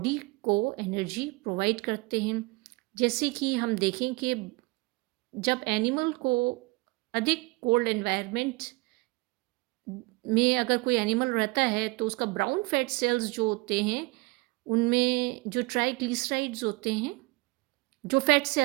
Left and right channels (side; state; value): left; quieter; 24.1 dB